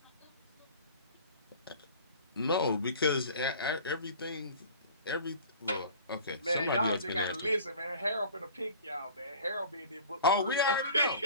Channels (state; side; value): inverted; both; correlation -0.44